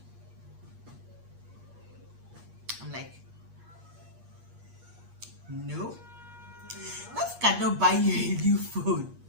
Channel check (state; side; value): late; left; 8.5 ms